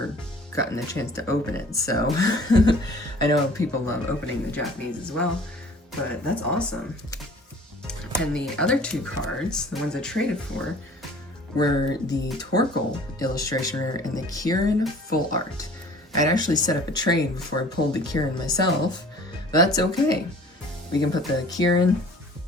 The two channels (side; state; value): both; normal; correlation 0.49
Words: gotten a chance to open it, so I know people love opening the Japanese as well, but that's awesome. And the other two cards, the ones I traded for, were the Torkoal illustration rare and the Kieran full art. I'd actually set up a trade before I pulled the Kieran myself, but that's okay. We can put the Kieran